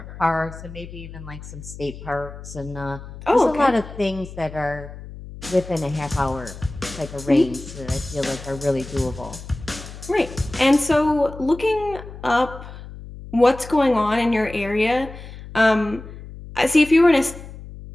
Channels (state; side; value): noise; left; hum, 14 dB below the sound